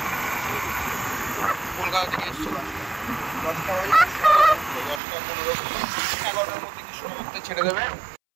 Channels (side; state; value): left; drops out; at 5.0 s